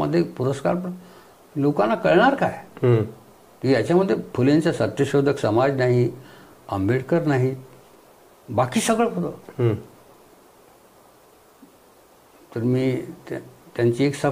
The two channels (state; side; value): identical; both; correlation 1.00